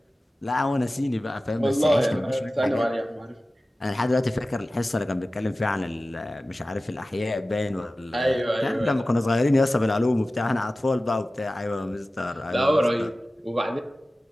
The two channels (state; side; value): normal; both; correlation 0.96